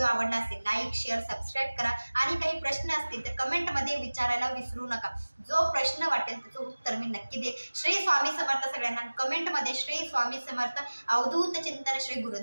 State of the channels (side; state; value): both; inverted; correlation -1.00